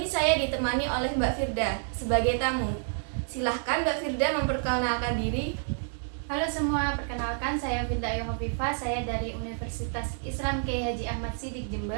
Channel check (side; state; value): left; silent; digital silence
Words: saya ditemani oleh Mbak Firda sebagai tamu. Silahkan Mbak Firda memperkenalkan diri. Halo semua, perkenalkan saya Firda Yohovifa, saya dari Universitas Islam Kiai Haji Ahmad Siddiq